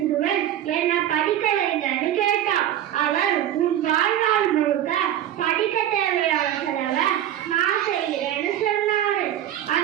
என்ன படிக்க வைங்கன்னு கேட்டான். அவர் உன் வாழ்நாள் முழுக்க படிக்க தேவையான செலவை நான் செய்கிறேன்னு சொன்னாரு.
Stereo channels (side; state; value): left; quieter; 11.5 dB